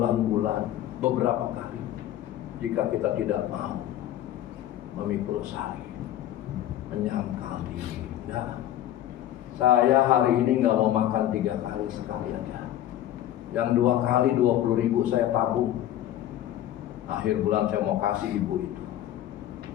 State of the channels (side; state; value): right; quieter; 12.5 dB